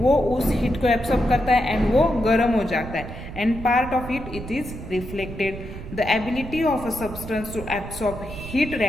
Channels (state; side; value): noise; right; rumble, 11 dB below the sound